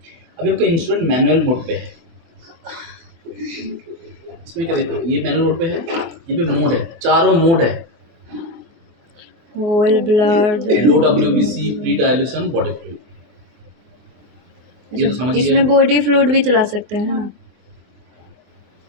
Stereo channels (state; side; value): late; left; 24 ms